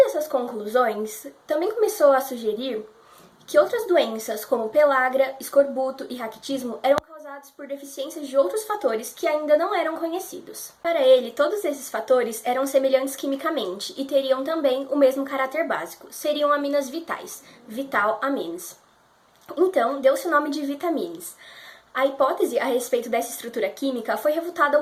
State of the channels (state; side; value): identical; both; correlation 1.00